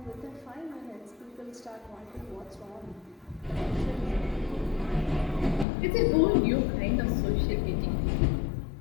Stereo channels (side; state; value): right; drops out; at 5.7 s